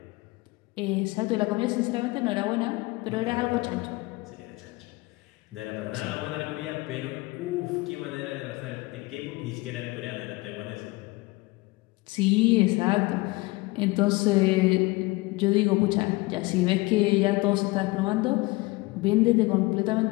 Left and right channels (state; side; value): quieter; right; 22.6 dB